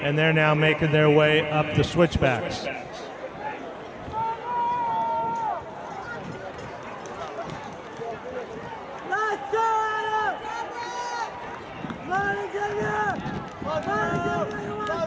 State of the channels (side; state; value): both; identical; correlation 1.00